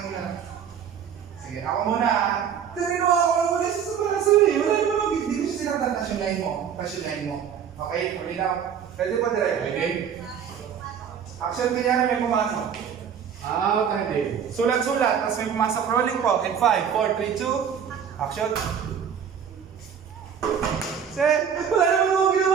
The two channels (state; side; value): quieter; left; 8.0 dB